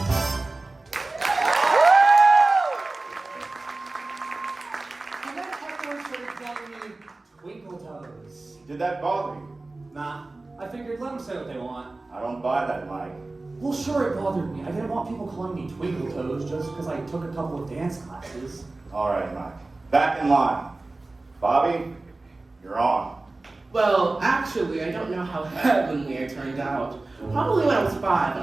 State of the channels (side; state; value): left; quieter; 3.2 dB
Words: And then everyone started calling me Twinkle Toes. Did that bother you? Nah, I figured let them say what they want. I don't buy that, Mike. Well, sure, it bothered me. I didn't want people calling me Twinkle Toes just because I took a couple of dance classes. All right, Mike. Back in line. Bobby, you're on. Well, actually, I don't know how heavenly I turned out. Probably when I was 5